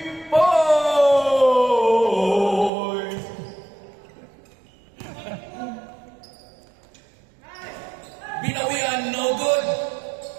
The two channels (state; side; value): drops out; left; at 2.7 s